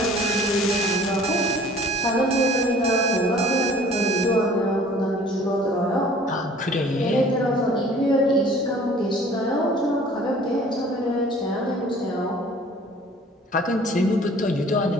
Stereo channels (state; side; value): normal; both; correlation 0.51